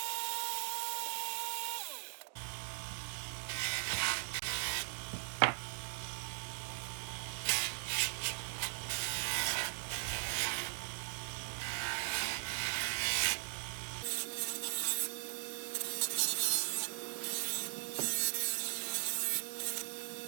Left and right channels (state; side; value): silent; left; digital silence